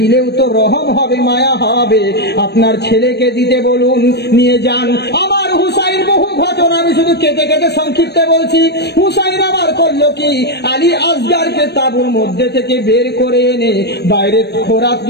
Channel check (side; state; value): right; late; 0.48 ms